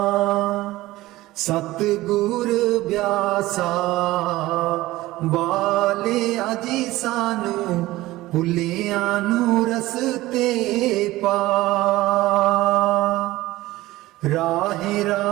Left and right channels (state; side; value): quieter; left; 17.7 dB